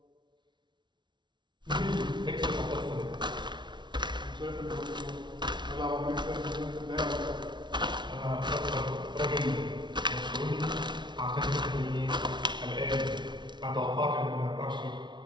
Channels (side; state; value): left; late; 0.22 ms